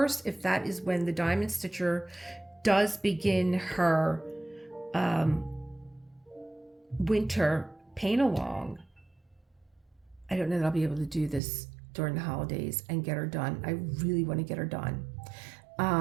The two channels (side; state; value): left; drops out; at 11.4 s